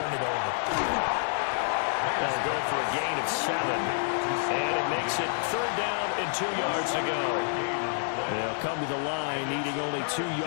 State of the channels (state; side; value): silent; right; digital silence